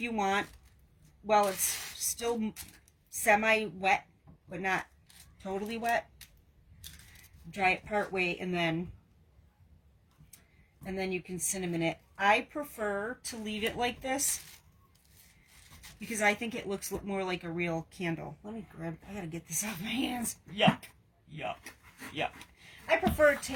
you want. Well, it's still semi-wet, but not totally wet. Dry it part way, and then you can cinnamon it. I prefer to leave it like this because I think it looks more like a real candle. Let me grab, I gotta get this off my hands. Yuck, yuck, yuck. I prefer it to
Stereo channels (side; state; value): both; identical; correlation 1.00